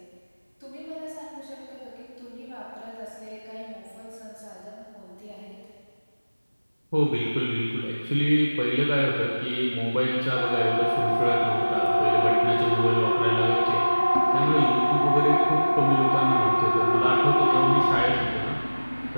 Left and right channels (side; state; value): both; inverted; correlation -1.00